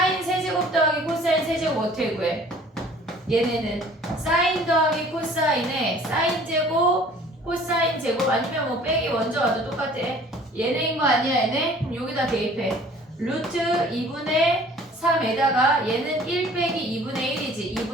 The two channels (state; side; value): normal; both; correlation 0.51